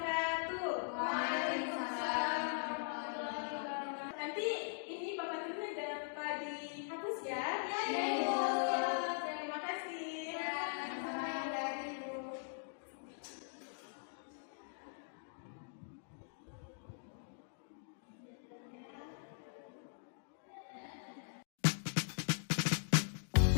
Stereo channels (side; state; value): right; silent; digital silence